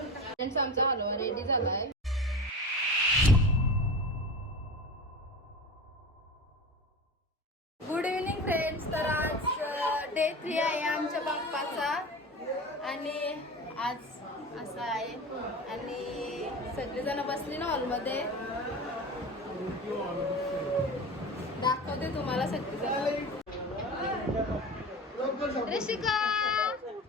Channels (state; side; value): normal; both; correlation 0.31